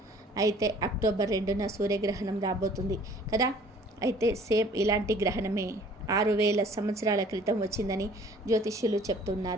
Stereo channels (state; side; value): normal; both; correlation 0.53